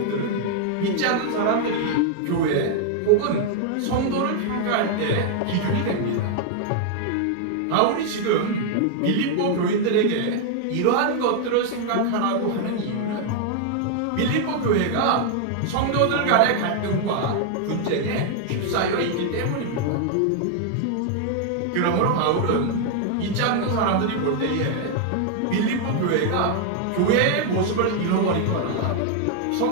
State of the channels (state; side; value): different; both; correlation 0.00